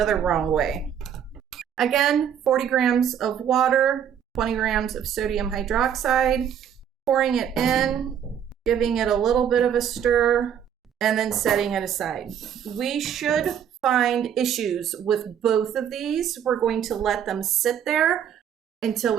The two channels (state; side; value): quieter; left; 8.8 dB